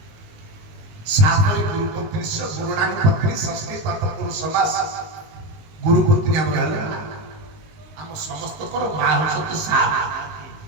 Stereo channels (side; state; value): left; late; 19 ms